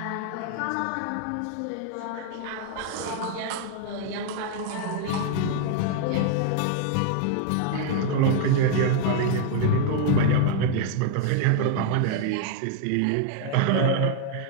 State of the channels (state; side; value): different; both; correlation 0.00